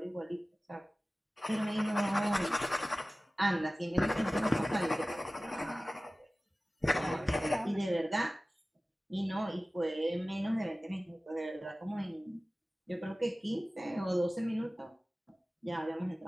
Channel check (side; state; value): both; normal; correlation 0.97